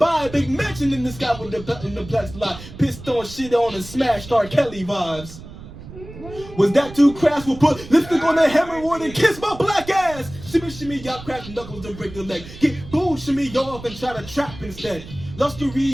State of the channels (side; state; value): right; noise; rumble, 15 dB below the sound